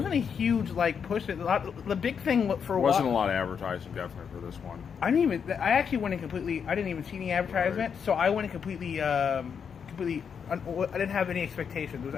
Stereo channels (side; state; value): right; quieter; 6.9 dB